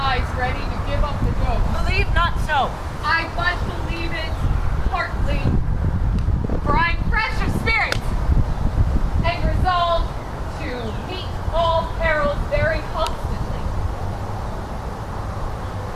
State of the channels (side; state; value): both; identical; correlation 1.00